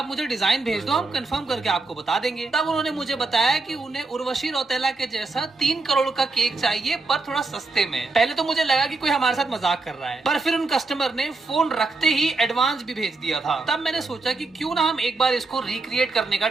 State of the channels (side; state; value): left; quieter; 3.6 dB